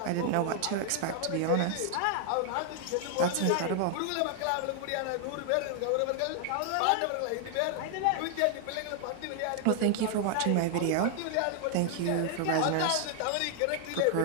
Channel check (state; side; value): different; both; correlation 0.00